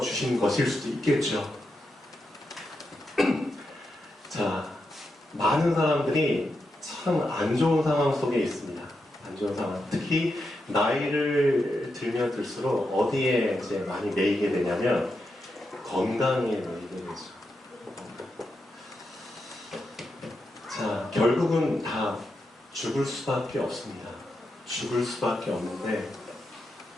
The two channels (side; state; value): both; normal; correlation 0.86